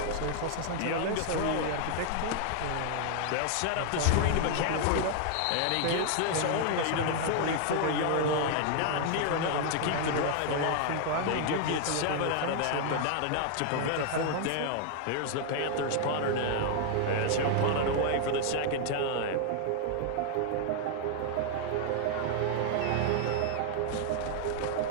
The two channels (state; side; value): different; both; correlation 0.00